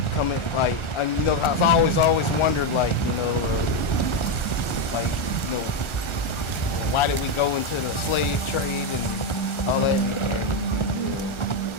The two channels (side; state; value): right; late; 1.4 ms